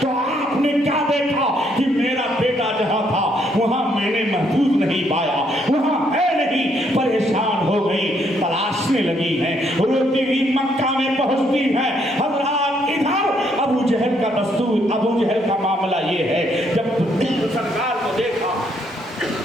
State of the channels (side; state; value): both; normal; correlation 0.71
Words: तो आपने क्या देखा कि मेरा बेटा जहाँ था वहाँ मैंने महफूज नहीं पाया, वहाँ है नहीं। परेशान हो गई, तलाशने लगी हैं, रोती हुई मक्का में पहुँचती हैं। हज़रात इधर अबू जहल का दस्तूर, अबू जहल का मामला ये है, जब सरकार को देखा,